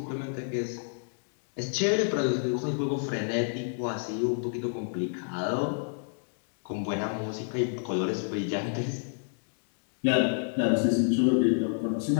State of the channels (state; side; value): silent; right; digital silence